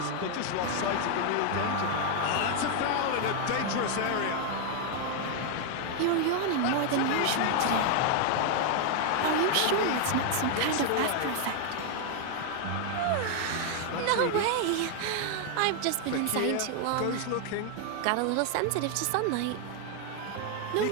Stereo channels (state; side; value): different; both; correlation 0.00